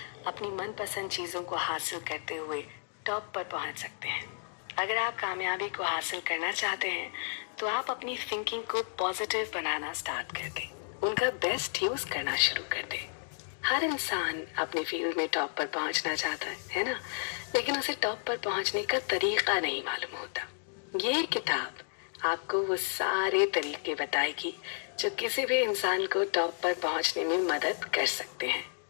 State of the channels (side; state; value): right; silent; digital silence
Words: अपनी मनपसंद चीज़ों को हासिल करते हुए टॉप पर पहुंच सकते हैं। अगर आप कामयाबी को हासिल करना चाहते हैं तो आप अपनी थिंकिंग को पॉजिटिव बनाना स्टार्ट कर दें, उनका बेस्ट यूज करना शुरू कर दें। हर इंसान अपने फील्ड में टॉप पर पहुंचना चाहता है ना, लेकिन उसे टॉप पर पहुंचने का तरीका नहीं मालूम होता। ये किताब आपको वो सारे तरीके बताएगी जो किसी भी इंसान को टॉप पर पहुंचने में मदद कर सकते हैं।